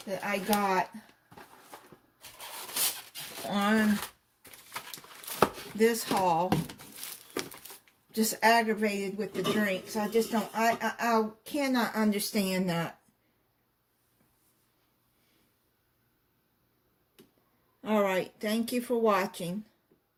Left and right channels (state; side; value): identical; both; correlation 1.00